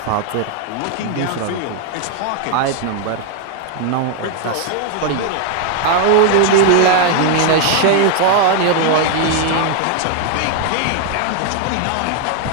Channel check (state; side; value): different; both; correlation 0.01